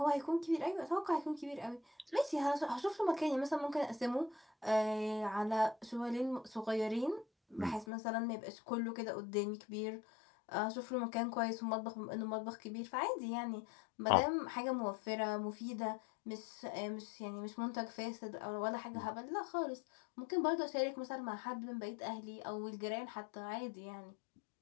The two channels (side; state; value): right; drops out; at 7.9 s